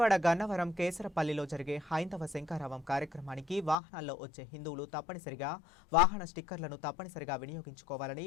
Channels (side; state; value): right; drops out; at 3.8 s